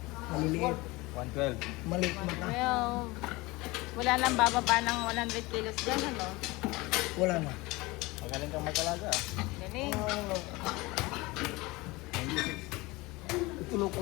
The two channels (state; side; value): quieter; right; 22.4 dB